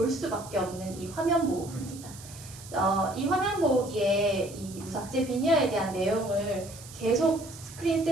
수밖에 없는 이 화면 보호기입니다. 이 화면 보호기에 이 무삭제 비니어에 대한 내용을 계속 스크린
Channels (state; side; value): noise; right; hiss, 17 dB below the sound